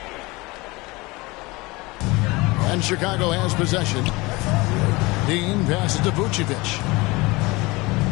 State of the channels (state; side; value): quieter; right; 23.3 dB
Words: And Chicago has possession. Dean passes to Vucevic.